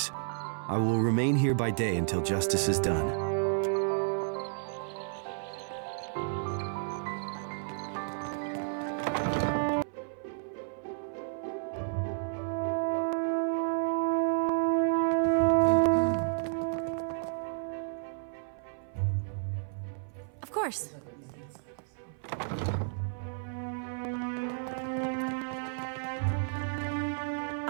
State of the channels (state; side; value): silent; left; 55 dB below the other